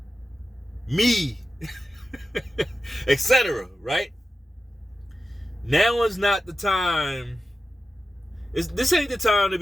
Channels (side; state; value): both; normal; correlation 0.92